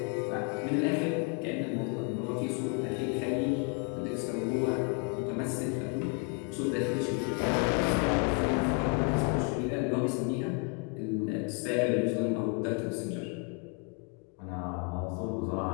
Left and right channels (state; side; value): quieter; right; 34.8 dB